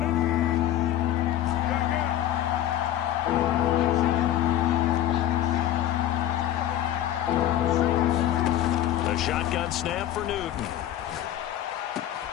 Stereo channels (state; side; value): quieter; right; 12.3 dB